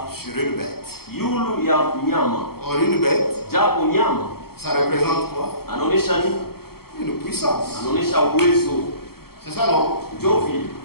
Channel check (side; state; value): right; late; 0.95 ms